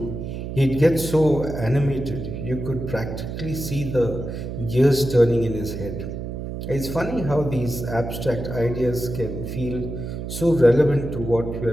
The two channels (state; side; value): noise; right; hum, 6 dB below the sound